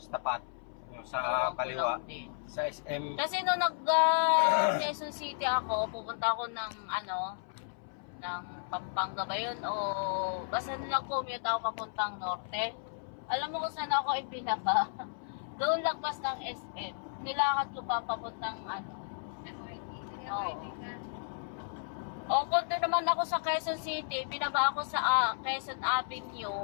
tapat. Yung sa kaliwa. Sa SM. Kasi nung Quezon City ako, pupunta ako ng Pampanga ba yun? O basta nilang commute ako papuntang norte. Alam mo kung saan ako ipinaba? Doon lagpas ng SM. Nilakad ko pa papuntang O kung doon naman ako sa Quezon City, binaba ako sa Quezon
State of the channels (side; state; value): right; silent; 55 dB below the other